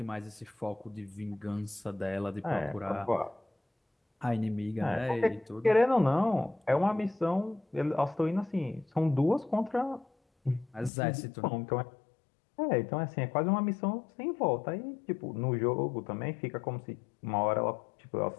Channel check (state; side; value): drops out; right; at 10.9 s